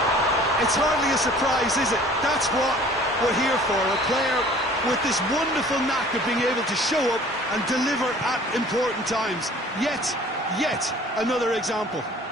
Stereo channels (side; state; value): both; normal; correlation 0.50